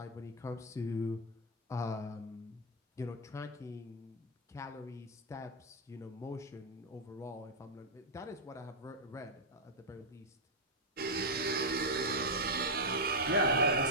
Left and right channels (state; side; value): normal; both; correlation -0.02